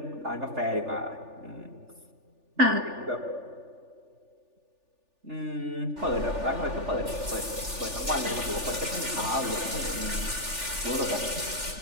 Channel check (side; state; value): left; late; 3.4 ms